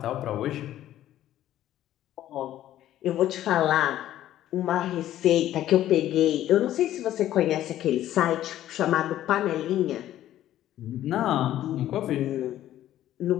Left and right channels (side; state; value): right; quieter; 12.8 dB